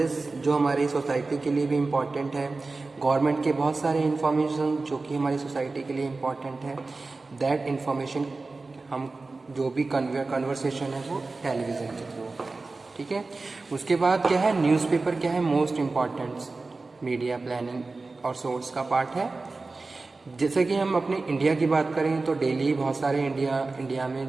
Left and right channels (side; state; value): left; quieter; 3.6 dB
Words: जो हमारी सोसाइटी के लिए भी इम्पॉर्टेंट है, गवर्नमेंट के बहुत सारे इन्फॉर्मेशन जो कि हमारी सोसाइटी के लिए इम्पॉर्टेंट है, दैट इन्फॉर्मेशन हम जो भी कन्वर्सेशन है वो टेलीविज़न के थ्रू होता है। ठीक है, उसके बाद क्या है, न्यूज़पेपर क्या है, मोस्ट इम्पॉर्टेंट मीडिया प्लानिंग और सोर्स का पार्ट है। जैसे कि हम अपने इंडिया की बात करें तो डेली बहुत सारे इंडिया में